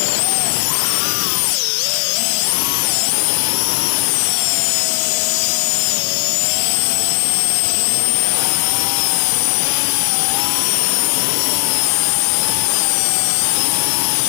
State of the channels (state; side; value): silent; right; digital silence